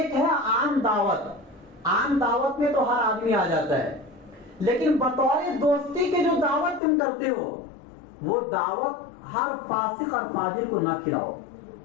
ہے عام دعوت، عام دعوت میں تو ہر آدمی آ جاتا ہے، لیکن بطور دوستی کے جو دعوت تم کرتے ہو وہ دعوت ہر فاسق اور فاجر کو نہ کھلاؤ،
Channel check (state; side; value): drops out; right; at 6.8 s